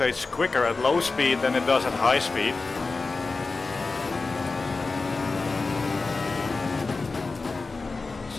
quicker at low speed than it does at high speed.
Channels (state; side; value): quieter; right; 3.9 dB